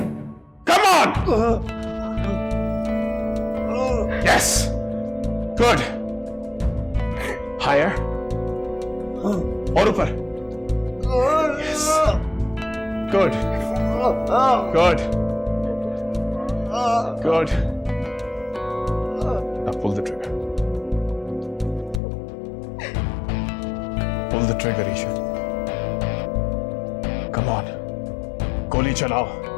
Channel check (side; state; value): right; drops out; at 22.0 s